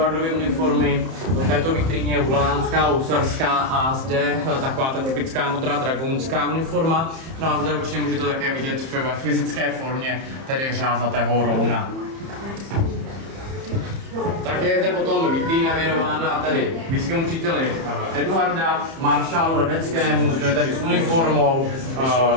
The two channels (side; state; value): left; late; 30 ms